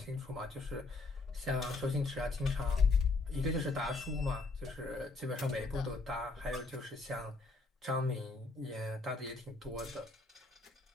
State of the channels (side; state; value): right; quieter; 3.5 dB